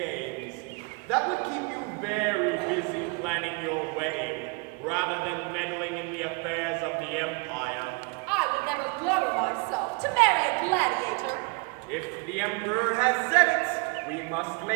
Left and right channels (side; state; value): left; quieter; 30.5 dB